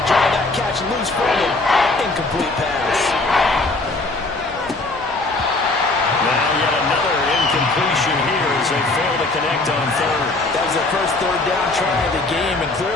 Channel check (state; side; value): quieter; right; 3.1 dB